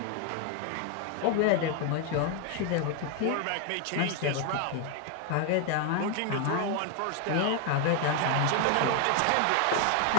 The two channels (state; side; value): different; both; correlation 0.01